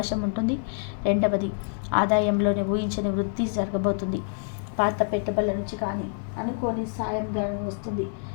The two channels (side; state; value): right; silent; 56 dB below the other